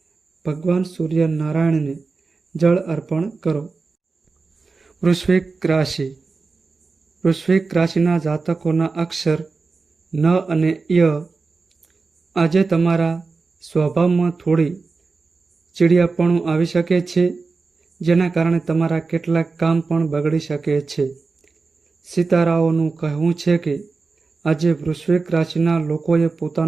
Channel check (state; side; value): quieter; left; 4.2 dB